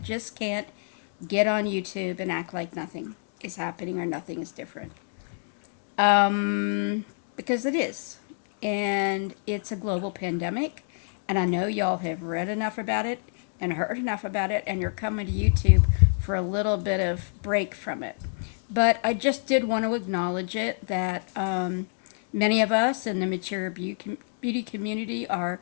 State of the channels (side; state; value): right; silent; digital silence